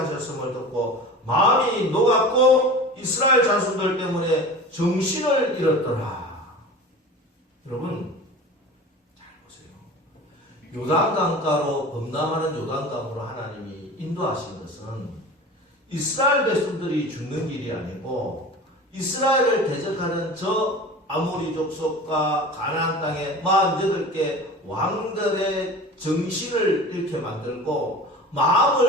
듣고 마음이 녹았고 이스라엘 자손들 때문에 정신을 잃었더라. 여러분 잘 보세요. 요단강가로 범람하는 요단강으로 하나님이 인도하신 것은 이스라엘 백성들이 죽는 길이 아니고 이스라엘을 대적하는 저 아모리 족속과 가나안 땅의 48개 왕들의 정신을 잃게 만들고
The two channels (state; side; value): normal; both; correlation 0.36